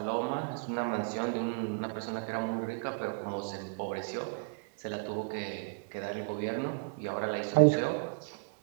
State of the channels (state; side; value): quieter; left; 38.8 dB